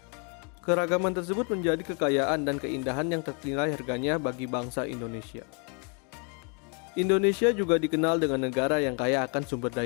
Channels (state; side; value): quieter; right; 37.8 dB